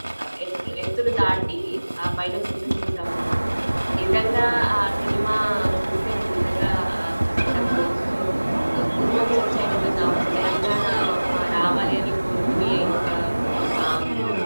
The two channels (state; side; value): inverted; both; correlation -1.00